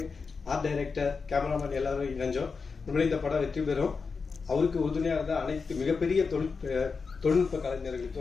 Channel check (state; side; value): quieter; right; 4.9 dB